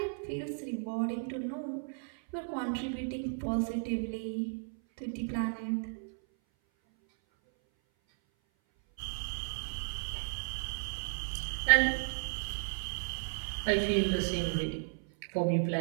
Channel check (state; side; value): silent; left; 55 dB below the other